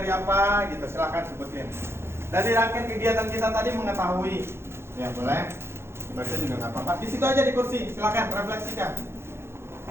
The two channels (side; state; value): left; late; 0.12 ms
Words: apa gitu, silahkan sebutin. Dari rangkaian kegiatan kita tadi mengetahui. Ya boleh. Baca juga nggak apa-apa. Di situ aja di kursi, silahkan refleksikan.